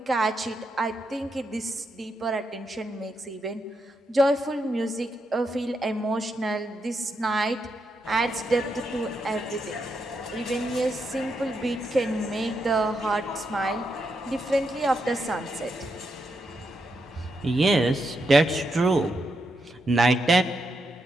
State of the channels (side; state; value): both; normal; correlation 0.82